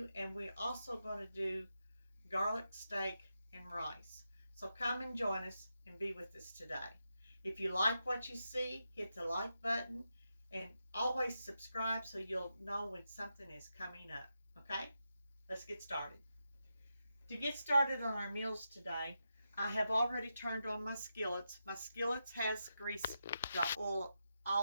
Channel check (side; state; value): both; inverted; correlation -0.87